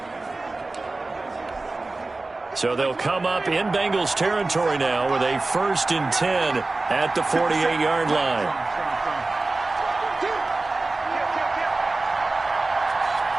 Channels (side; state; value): left; quieter; 3.3 dB